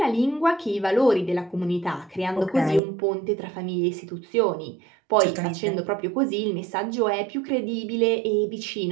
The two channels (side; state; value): left; drops out; at 2.8 s